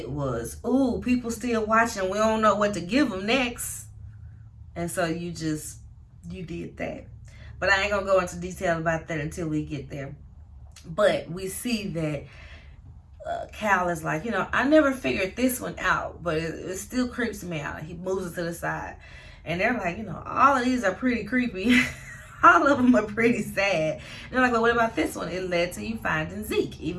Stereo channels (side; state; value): both; identical; correlation 1.00